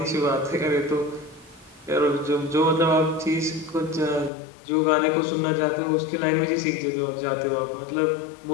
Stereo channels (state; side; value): drops out; right; at 4.3 s